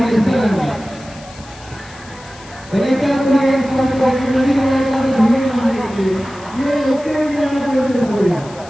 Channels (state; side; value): noise; left; hiss, 21 dB below the sound